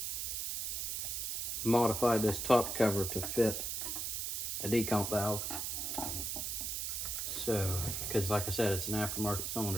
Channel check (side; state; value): right; noise; hiss, 2 dB below the sound